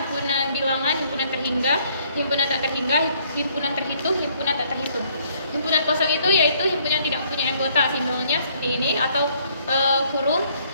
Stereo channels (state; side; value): inverted; both; correlation -0.65